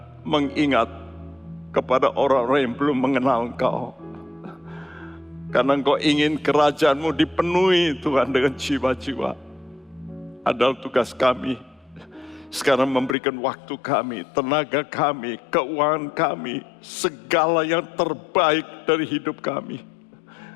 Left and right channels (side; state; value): right; drops out; at 13.2 s